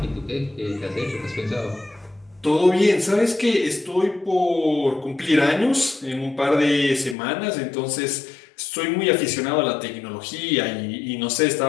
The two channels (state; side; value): drops out; right; at 7.2 s